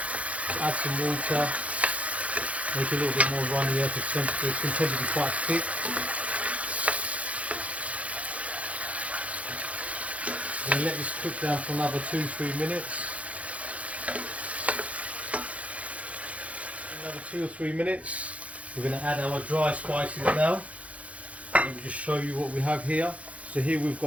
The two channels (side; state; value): left; late; 0.065 ms